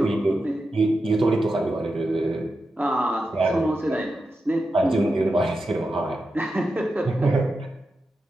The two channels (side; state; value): both; normal; correlation 0.89